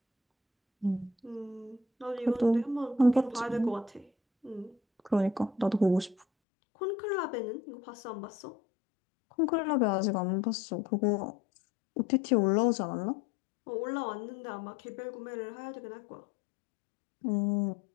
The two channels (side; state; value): right; drops out; at 6.2 s